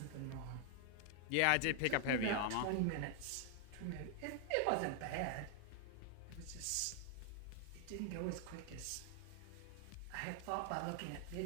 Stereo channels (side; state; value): both; different; correlation 0.00